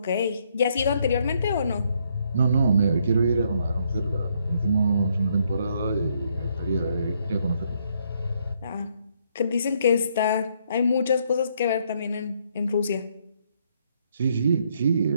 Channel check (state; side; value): inverted; both; correlation -0.71